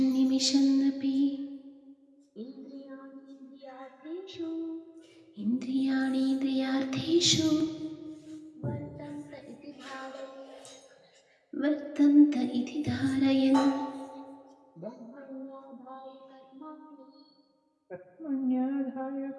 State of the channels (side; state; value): both; identical; correlation 1.00